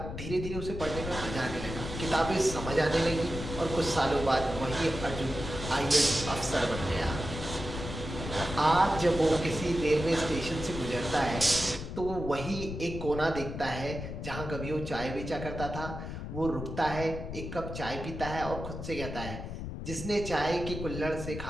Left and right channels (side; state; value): left; noise; rumble, 7 dB below the sound